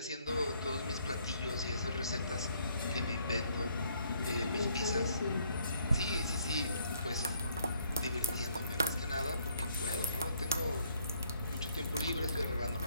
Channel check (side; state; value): both; inverted; correlation -0.68